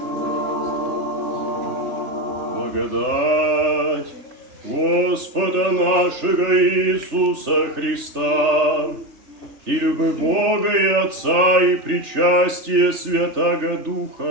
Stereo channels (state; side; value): late; left; 3.3 ms